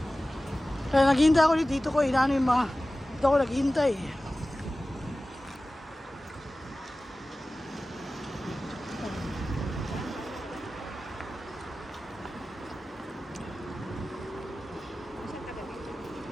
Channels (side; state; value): both; normal; correlation 0.96